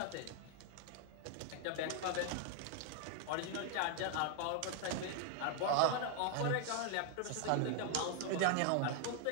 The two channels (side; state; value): both; different; correlation 0.00